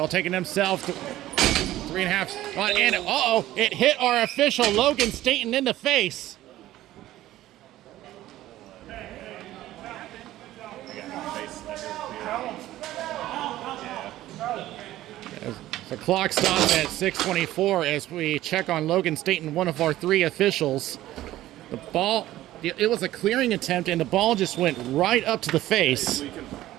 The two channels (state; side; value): quieter; left; 14.8 dB